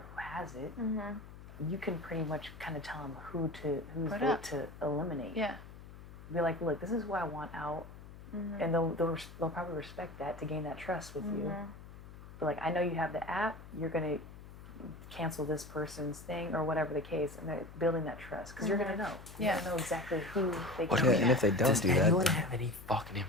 has it, you can pretty much kind of tell them whose Put vote up. to eliminate. Yeah. Be like, look, this is who I want out, and they'll probably respect that to gain that trust with you. But like, I know you have the app. You're gonna cancel this person's thing or whatever the case, and they're building that trust because you're gonna know. You're Yeah. gonna know exactly who they What can. do Yeah, we and if they don't Does do that, anyone then- have any fucking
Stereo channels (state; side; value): noise; left; hum, 16 dB below the sound